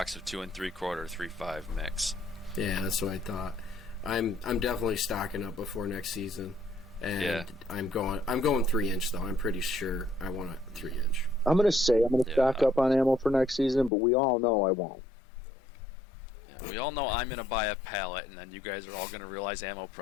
of 2 3/4 3.5 mix. Yeah, that's what I thought. I'm definitely stocking up before next season, and I'm going 3-inch though. I'm pretty sure I want a 3-inch. I'm gonna stock up on ammo for next season, but we all know I won't. Yeah, we all know I'm gonna buy a pallet, and then you guys are all gonna realize ammo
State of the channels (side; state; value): right; drops out; at 13.9 s